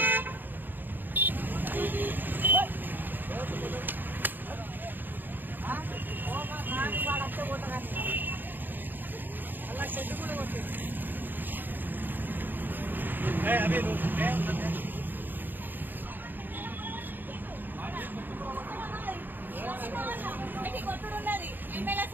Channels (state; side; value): late; left; 0.090 ms